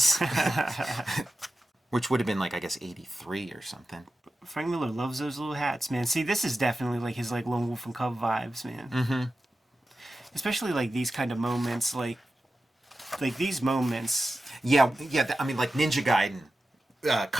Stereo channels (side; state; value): both; normal; correlation 0.93